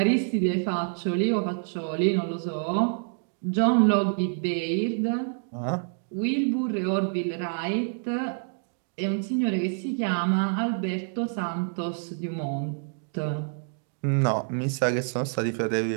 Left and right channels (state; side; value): silent; left; 60 dB below the other